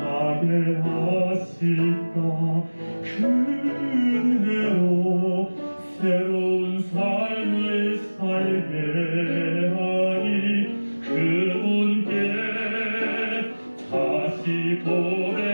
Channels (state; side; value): inverted; both; correlation -1.00